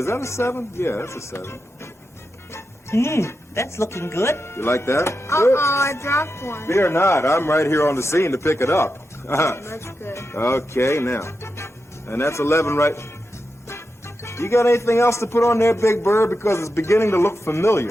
that a 7? Yeah, that's a 7. That's looking good. You like that? Uh-oh, I dropped one. Fear not. I'm right here on the scene to pick it up. That's good. Okay, now. And that's 11 right. You got anything else to put on there, Big Bird? Because it's beginning to look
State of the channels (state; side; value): normal; both; correlation 0.89